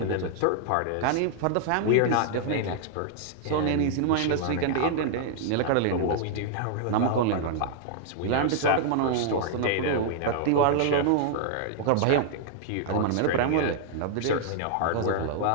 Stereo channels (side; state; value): both; different; correlation -0.01